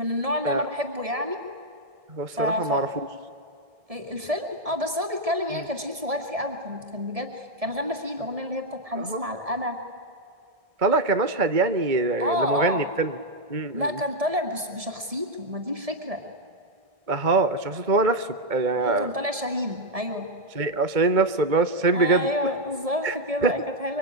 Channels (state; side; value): late; left; 1.7 ms